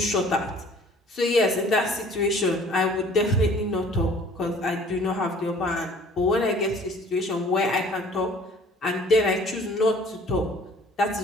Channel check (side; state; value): both; normal; correlation 0.52